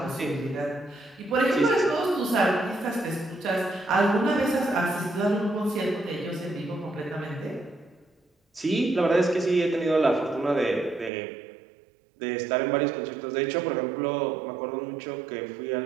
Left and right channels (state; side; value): drops out; left; at 11.1 s